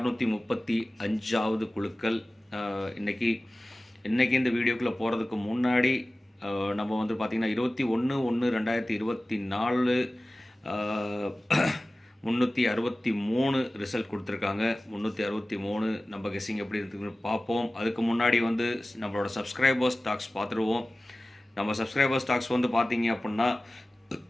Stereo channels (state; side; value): normal; both; correlation 0.97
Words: குழுக்கள். இன்றைக்கி இந்த வீடியோக்குள்ளே போகிறதுக்கு முன்னாடி நம்ம வந்து பார்த்திங்கன்னா 21/1/2024 363 ரிசல்ட் கொடுத்துருக்காங்க. 363 நம்ம கெஸ்ஸிங் எப்படி இருக்குன்னு பார்ப்போம். அதுக்கு முன்னாடி வந்து நம்மளோட சப்ஸ்கிரைபர்ஸ் டாக்ஸ் பார்த்துருவோம். நம்ம சப்ஸ்கிரைபர்ஸ் டாக்ஸ் வந்து பார்த்தீங்க அப்படின்னா,